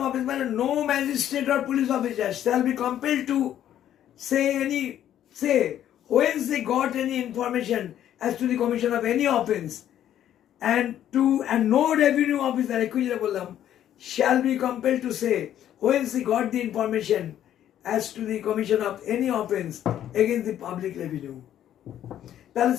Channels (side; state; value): right; quieter; 11.1 dB